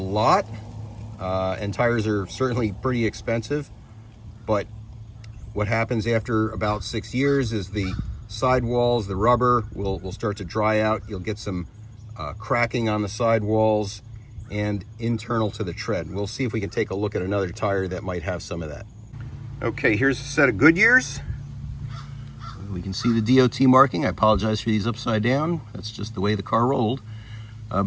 and tires are certainly pretty expensive, but what happens after about 6 years is the sidewalls, the rubber will start to dry out. You'll get some cracking on the sidewalls and internal to the tread. We'll see if we can take a look at another tire that might have some of that. Okay, here's a set of Goodyears. We can see the DOT marking. I apologize for these upside down. That's just the way the car rolled.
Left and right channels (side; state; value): both; identical; correlation 1.00